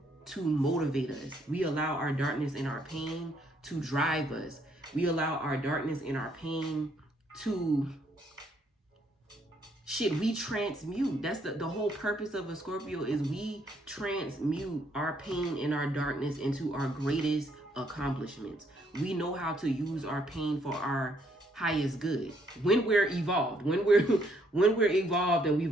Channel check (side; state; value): both; normal; correlation 0.70